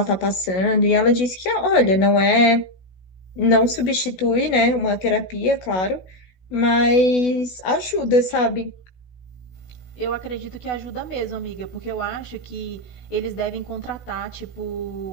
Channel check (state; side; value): late; right; 16 ms